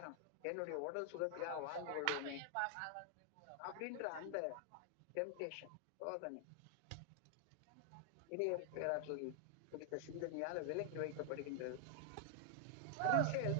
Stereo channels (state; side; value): different; both; correlation 0.00